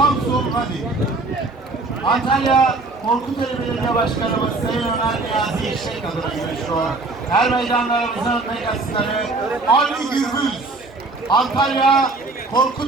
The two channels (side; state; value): left; quieter; 3.4 dB